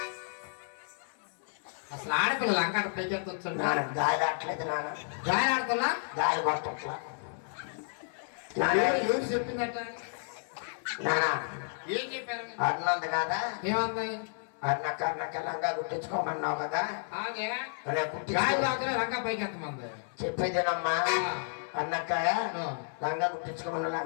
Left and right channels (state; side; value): silent; right; 57 dB below the other